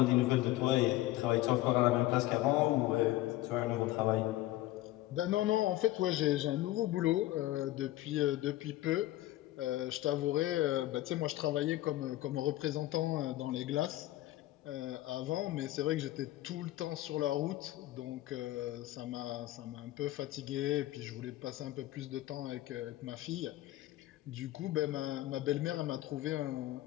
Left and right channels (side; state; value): right; quieter; 16.2 dB